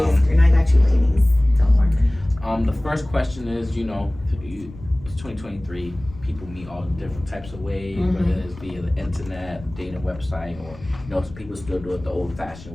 and I got you, ladies. Don't worry. The first question is, you know, it's 2023. People meet all different types of ways, whether it's via the internet, dating website, or you know, some people still do it the old-fashioned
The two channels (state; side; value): noise; left; rumble, 18 dB below the sound